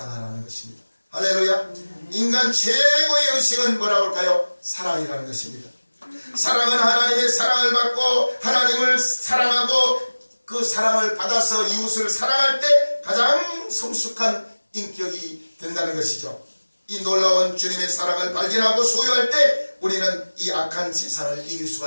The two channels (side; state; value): both; inverted; correlation -1.00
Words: 것입니다. 할렐루야. 인간 최고의 의식은 뭐라고 할까요? 사랑이라는 것입니다. 사랑은 하나님의 사랑을 받고 하나님을 사랑하고 그 사랑을 받아서 이웃을 사랑할 때 가장 성숙한 인격이 된다는 것이죠. 이 놀라운 주님의 사랑을 발견하고 소유할 때 우리는 이 악한 세상을 이길